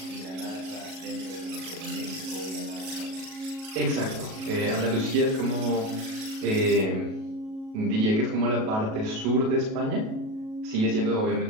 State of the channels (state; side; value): late; left; 37 ms